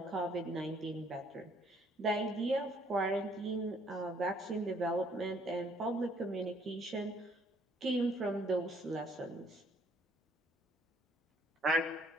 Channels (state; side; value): normal; both; correlation 0.64